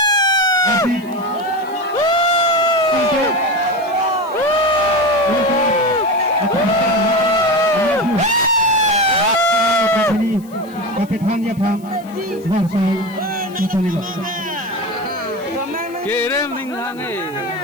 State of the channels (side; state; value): left; noise; hiss, 25 dB below the sound